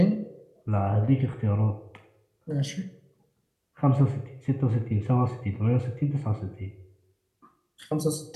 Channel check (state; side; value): identical; both; correlation 1.00